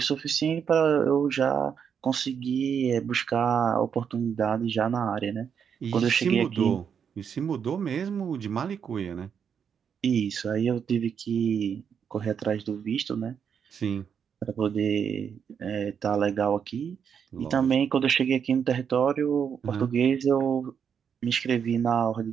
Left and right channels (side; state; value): left; quieter; 7.4 dB